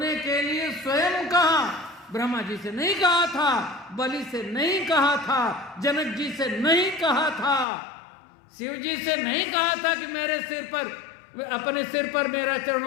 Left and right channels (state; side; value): drops out; right; at 7.7 s